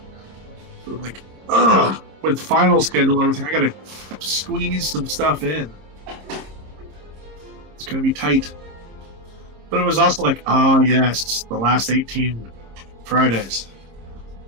So I'm like, ugh, with the final schedule and everything, I got to squeeze some stuff in. It's going to be tight. But it was also like, oh, yes, the last 18 Fridays.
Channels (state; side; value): late; left; 26 ms